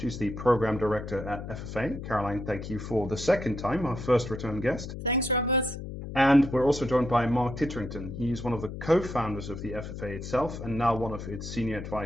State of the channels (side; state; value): left; noise; hum, 8 dB below the sound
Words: the Program Director at FFA. Caroline, thank you for the second time, our first return guest. Thanks, Robert. And we're also joined by Mark Titterington. He's one of the co-founders of the FFA itself and now one of its senior